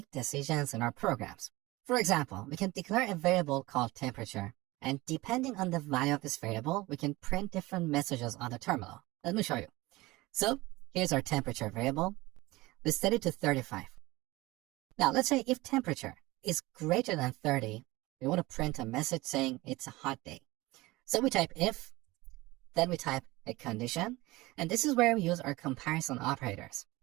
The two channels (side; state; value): left; quieter; 20.5 dB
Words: decisions in our programs. For example, we can declare a variable called temperature, and depending on the value of this variable, we can print different messages on the terminal. Let me show you. So here's our temperature variable. We set it to 35. Now let's say if temperature is greater than 30, we want to print a message saying it's a hot day. So we type if, then we type a condition, and this is where we use our comparison operators.